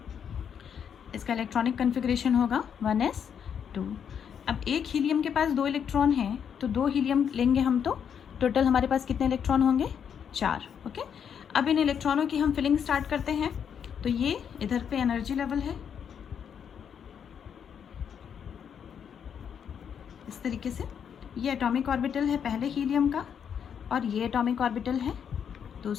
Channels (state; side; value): quieter; right; 7.9 dB